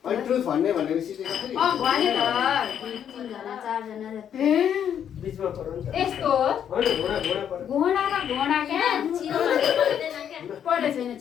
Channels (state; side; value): quieter; right; 9.0 dB